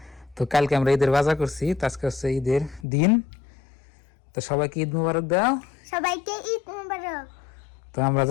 তো কালকে আমরা ঈদের বাজার করছি, তো আজকে হচ্ছে ঈদের দিন। তো সবাইকে ঈদ মোবারক দাও। সবাইকে ঈদ মোবারক। তো আমরা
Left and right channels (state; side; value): drops out; right; at 2.9 s